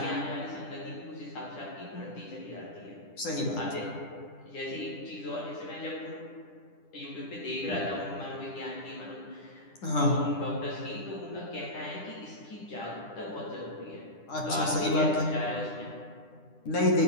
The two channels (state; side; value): late; right; 10 ms